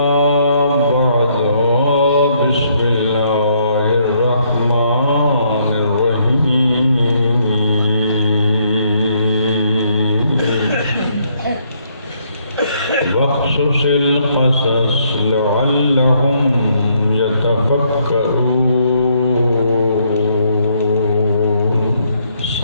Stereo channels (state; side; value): inverted; both; correlation -0.71